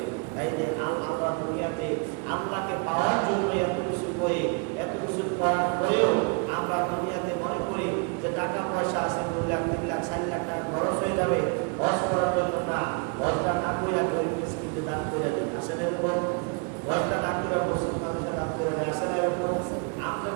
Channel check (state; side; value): quieter; left; 34.5 dB